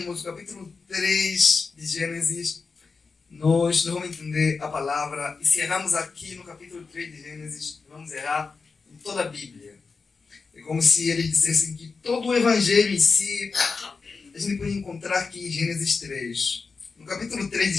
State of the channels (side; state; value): right; quieter; 4.7 dB